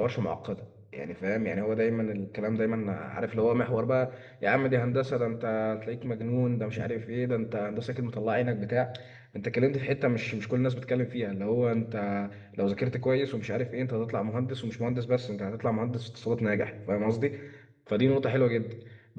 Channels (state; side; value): identical; both; correlation 1.00